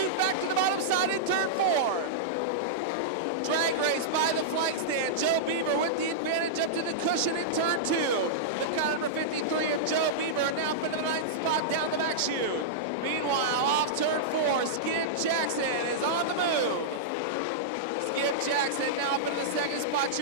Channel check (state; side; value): normal; both; correlation -0.06